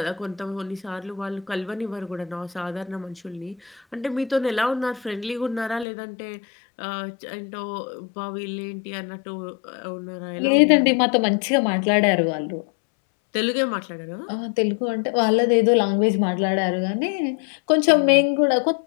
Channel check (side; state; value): right; drops out; at 5.9 s